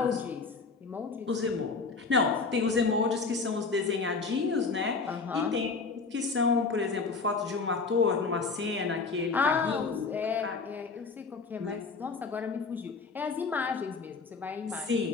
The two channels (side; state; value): right; quieter; 4.4 dB